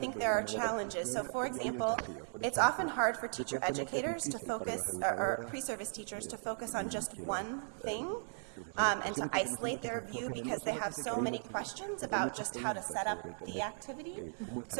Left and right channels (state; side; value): silent; left; digital silence